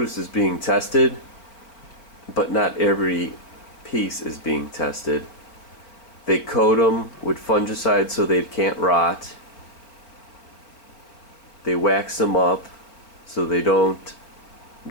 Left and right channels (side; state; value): right; late; 4.6 ms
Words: is being tested, but not every piece is being tested. They coat them with fungicides so they can't rot. They wax them up so they don't